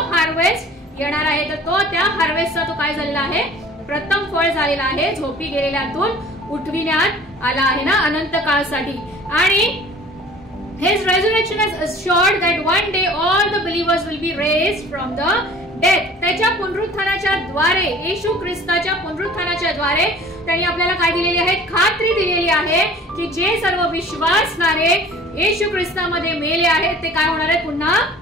हार्वेस्ट येणार आहे. तर तो त्या हार्वेस्टचा तो काय झालेला आहे, प्रथम फळ झालेला आहे. झोपी गेलेल्यातून उठविण्यात आला आहे ना अनंत काळासाठी. आणि his resurrection has assured that one day all the believers will be raised from the death. त्याच्या पुनरुत्थानाच्या द्वारे, येशू ख्रिस्ताच्या पुनरुत्थानाच्या द्वारे त्यांनी आपल्याला काय दिलेली आहे, खात्री दिलेली आहे की जे सर्व विश्वासणारे येशू ख्रिस्तामध्ये मेले आहेत ते काय होणार आहेत, पुन्हा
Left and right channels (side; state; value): both; normal; correlation 0.47